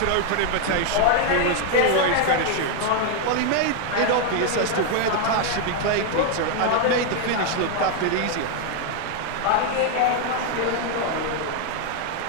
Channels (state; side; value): different; both; correlation 0.01